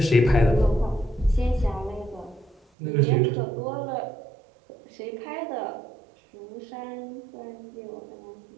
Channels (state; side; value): drops out; left; at 2.6 s